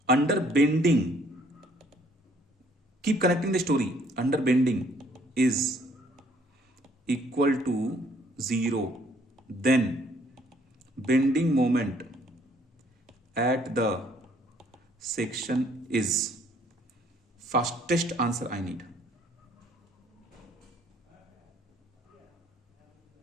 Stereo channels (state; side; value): normal; both; correlation 0.63